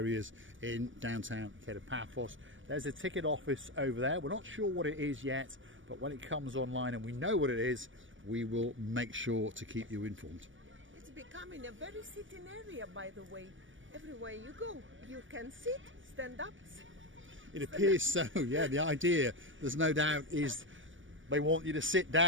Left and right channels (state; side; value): late; left; 0.56 ms